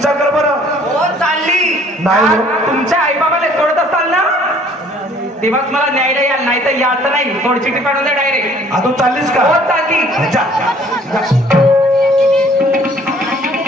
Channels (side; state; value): both; normal; correlation 0.57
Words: कर बरं. हो चालली. नाही तुमच्या आई बाबाला सोडत असाल ना तेव्हाच मला न्यायला याल नाही तर याचं नाही. सोड चिठ्ठी पाठवून द्या डायरेक्ट. तू चाललीस का? हो चालली.